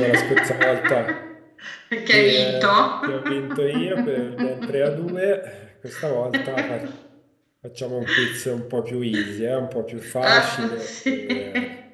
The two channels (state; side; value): identical; both; correlation 1.00